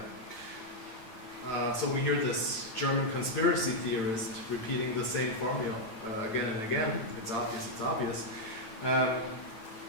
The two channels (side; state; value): right; late; 9.0 ms